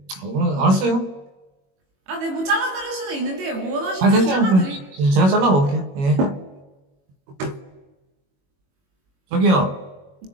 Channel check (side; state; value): left; late; 21 ms